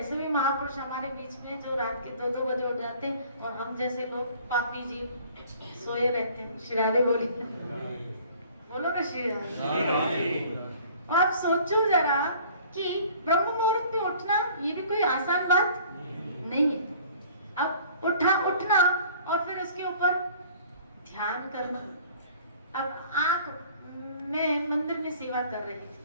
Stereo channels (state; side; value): inverted; both; correlation -0.51